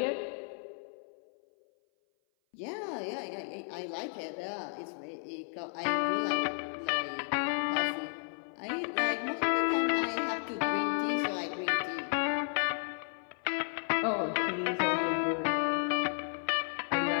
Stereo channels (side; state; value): right; silent; 56 dB below the other